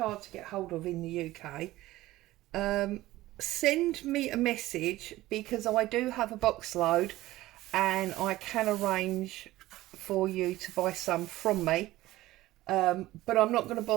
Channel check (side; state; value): left; quieter; 16.7 dB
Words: to get hold of in the UK, send me a message, because I do have a box load and I can arrange for you to buy some from me, but I'm not going to